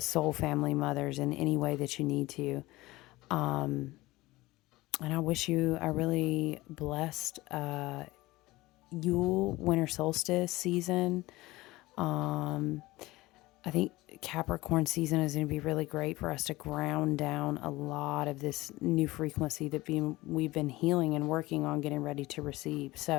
soul family mothers in any way that you need to. And I wish you a really blessed Yule winter solstice season. I think Capricorn season is going to be really great for us to ground down a lot of this new frequency that we've been healing and working on getting ready to receive.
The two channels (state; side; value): quieter; right; 19.5 dB